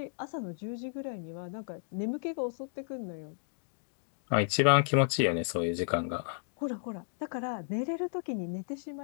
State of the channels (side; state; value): right; silent; digital silence